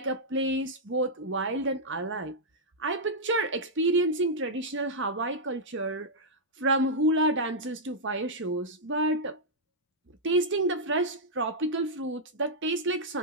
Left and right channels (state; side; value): normal; both; correlation -0.08